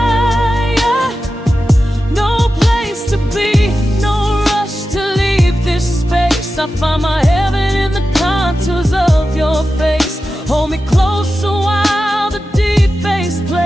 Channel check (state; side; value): normal; both; correlation 0.92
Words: No place to be, no rush to leave this space. I find my heaven in the contours of your face. Hold me closer while the deep bass